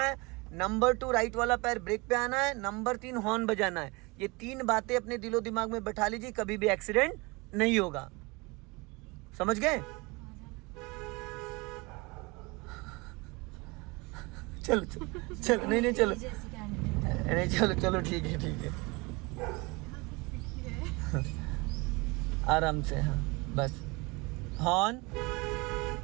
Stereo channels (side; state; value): left; quieter; 25.8 dB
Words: नंबर 2, राइट वाला पैर ब्रेक पे आना है। नंबर 3, हॉर्न बजाना है। ये 3 बातें अपने दिलो दिमाग में बैठा लीजिए, कभी भी एक्सीडेंट नहीं होगा। समझ गए? चलो चलो चलो, नहीं चलो, नहीं चलो चलो, ठीक है ठीक है, आराम से। हाँ बस, हॉर्न।